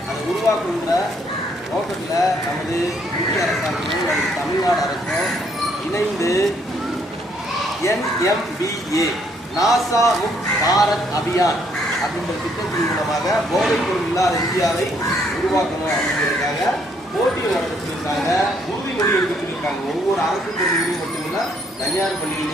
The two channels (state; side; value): normal; both; correlation 0.69